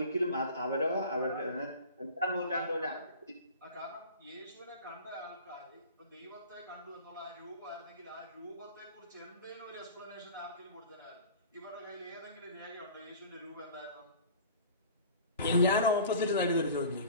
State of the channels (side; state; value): both; inverted; correlation -0.40